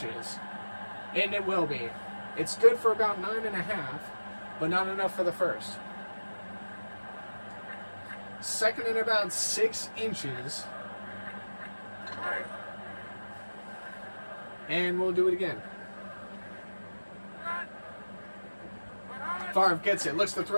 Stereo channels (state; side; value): inverted; both; correlation -1.00